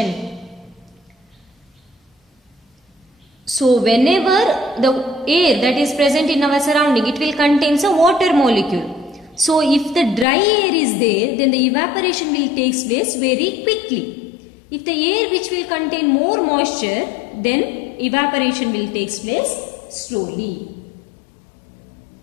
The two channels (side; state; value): right; drops out; at 10.2 s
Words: So whenever the air that is present in our surrounding, it will contain a water molecule. So if the dry air is there, then the evaporation will take place very quickly. If the air which will contain more moisture, then evaporation will take place slowly.